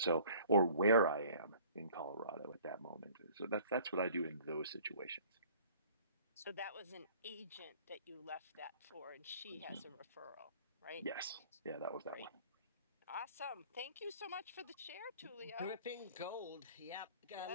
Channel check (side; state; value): both; inverted; correlation -0.51